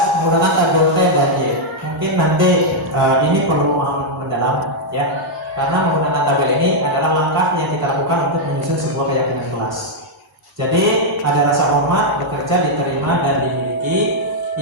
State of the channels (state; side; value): normal; both; correlation -0.03